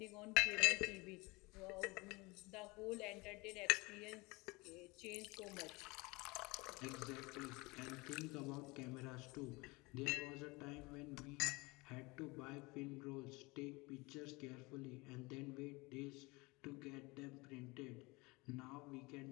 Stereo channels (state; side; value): quieter; right; 24.7 dB